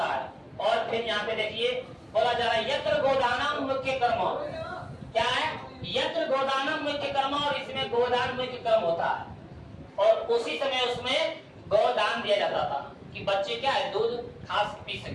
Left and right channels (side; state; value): both; identical; correlation 1.00